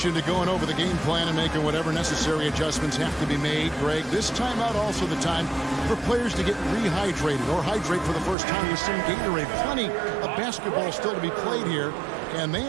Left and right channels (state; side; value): drops out; left; at 8.3 s